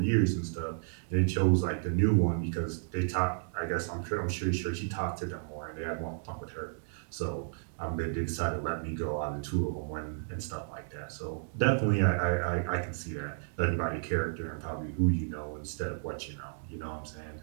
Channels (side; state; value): left; silent; digital silence